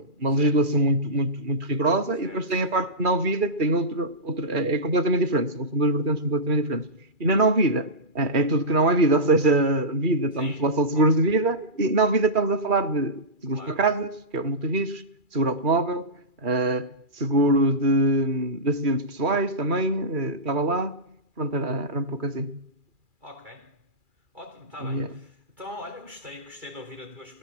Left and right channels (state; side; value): late; left; 2.4 ms